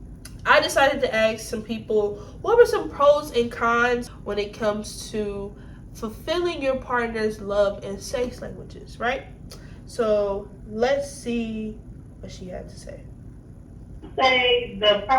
I decided to ask some people what were some pros and cons when it comes to fulfilling your partner's love and sex languages, right? So let's see what she had to say. Say the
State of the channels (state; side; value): identical; both; correlation 1.00